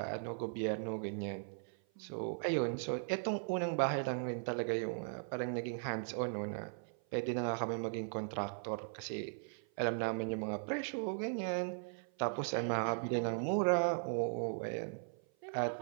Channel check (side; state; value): left; silent; 52 dB below the other